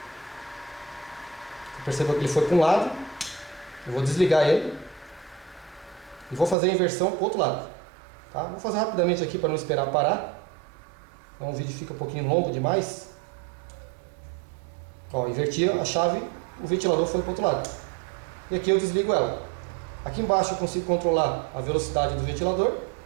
Você percebeu que ele foi para um lado, eu vou desligar ele e vou fazer a inversão para o outro lado, tá? Vou fazer rapidamente aqui para não esperar parar, então o vídeo fica um pouquinho longo demais. Ó, inverti a chave, o ventilador foi para o outro lado e aqui eu desligo ela. Aqui embaixo eu consigo controlar a velocidade do ventilador.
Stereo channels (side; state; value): left; drops out; at 6.6 s